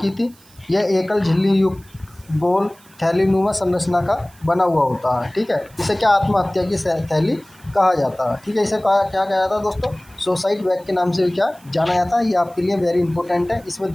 थी। यह एकल झिल्ली युक्त गोल थैलीनुमा संरचना का बना हुआ होता है। ठीक है, इसे क्या आत्महत्या की थैली कहा जाता है। ठीक है, इसे क्या कहा जाता है दोस्तों, सुसाइड बैग के नाम से भी क्या जाना जाता है। ये आपके लिए वेरी इंपॉर्टेंट है। इसमें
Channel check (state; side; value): noise; right; hiss, 27 dB below the sound